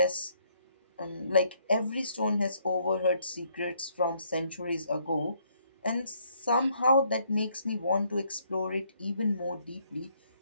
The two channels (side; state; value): both; inverted; correlation -0.68